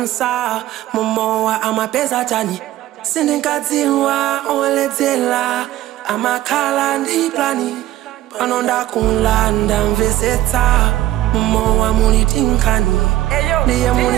momowa amapeza chani sindinkadziwa oledzera amakhala ndi plani pano ndakulanda mvesetsa momowa muli tinkani ndiye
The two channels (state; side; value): quieter; left; 14.6 dB